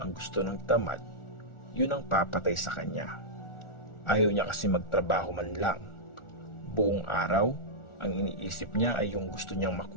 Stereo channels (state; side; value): late; right; 1.4 ms